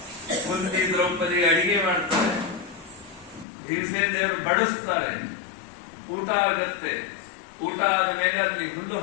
ಕುಂತಿ ದ್ರೌಪದಿ ಅಡಿಗೆ ಮಾಡ್ತಾರೆ, ಭೀಮಸೇನ ದೇವರು ಬಡಿಸ್ತಾರೆ, ಊಟ ಆಗತ್ತೆ. ಊಟ ಆದ ಮೇಲೆ ಅಲ್ಲಿ ಹುಲ್ಲು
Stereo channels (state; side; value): drops out; right; at 3.5 s